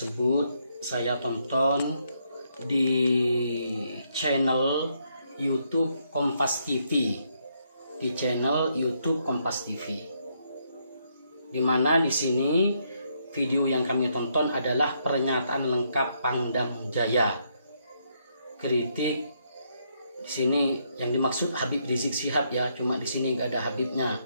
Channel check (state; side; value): inverted; both; correlation -0.75